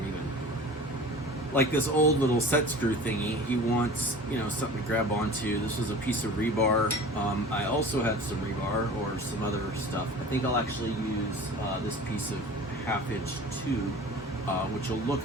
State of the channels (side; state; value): both; normal; correlation 0.40